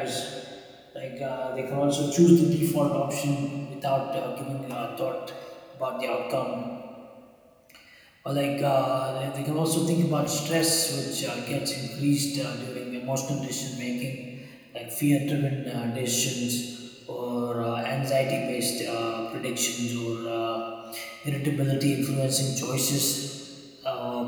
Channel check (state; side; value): identical; both; correlation 1.00